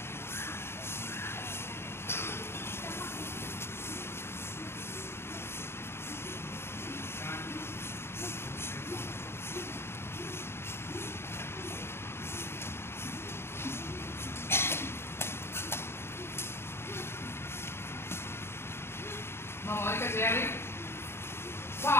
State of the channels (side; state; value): right; late; 0.12 ms